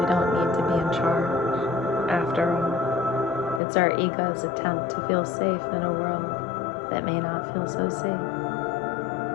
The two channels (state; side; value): drops out; right; at 3.6 s